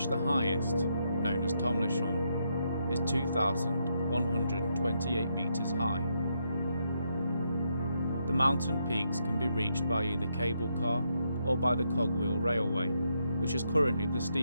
the highest, known as Tomlichon, is 2,128 metres high. The mountain peaks can be reached by either cable car or by the cogwheel railway, which is currently the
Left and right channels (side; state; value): both; inverted; correlation -0.78